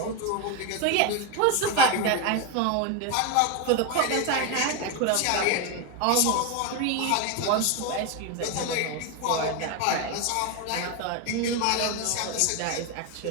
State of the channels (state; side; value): different; both; correlation 0.02